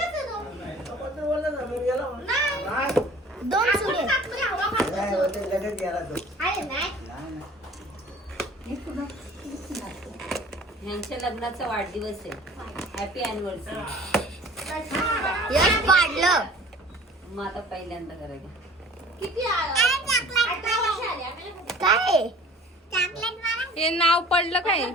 नाही. दोन चुडे. अरे नाही. यांच्या लग्नाचा वाढदिवस आहे. Happy anniversary. यश पाडलं मग आता पहिल्यांदा करायचं. किती आला? 18 वर्ष आली. काय? चॉकलेट मला हे नाव पडलं काय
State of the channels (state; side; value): normal; both; correlation 0.47